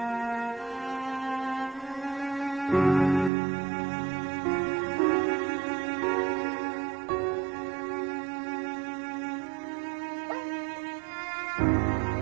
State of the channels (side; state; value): left; drops out; at 3.3 s